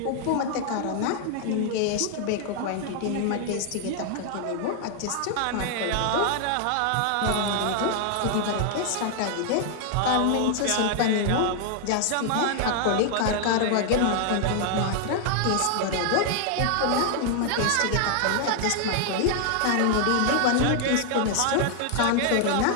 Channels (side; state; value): both; different; correlation 0.00